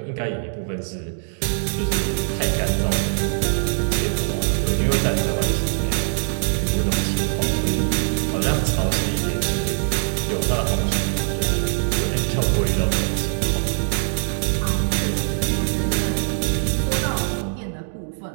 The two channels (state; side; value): silent; left; 64 dB below the other